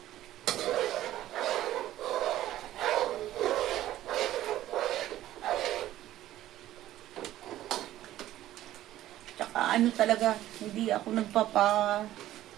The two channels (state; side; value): quieter; left; 13.8 dB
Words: Ano talaga, hindi ako